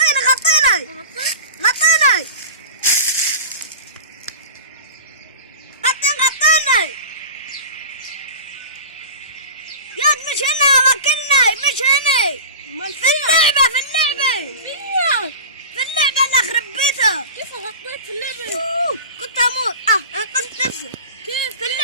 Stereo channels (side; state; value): both; inverted; correlation -0.33